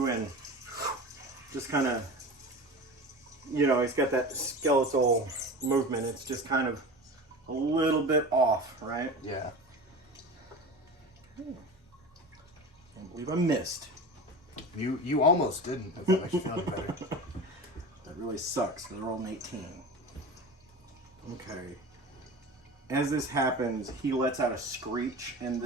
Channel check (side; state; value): both; normal; correlation 0.31